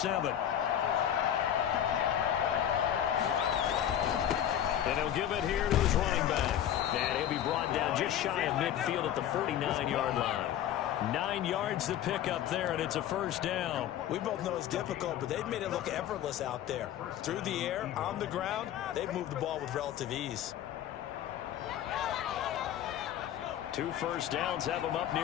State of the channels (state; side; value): quieter; right; 10.8 dB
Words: And he'll give it here to his running back. And he'll be brought down just shy of midfield at the 49-yard line. 9 yards to pick up there, and it's a first down. We both know it's difficult, but they've made it look effortless out there. Through the air, on the ground, they've moved the ball with relative ease. 2 first downs have them up